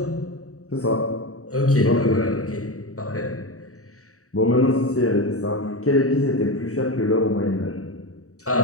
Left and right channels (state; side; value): late; right; 0.65 ms